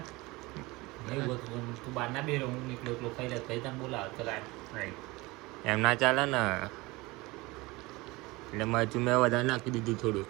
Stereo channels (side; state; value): left; quieter; 22.5 dB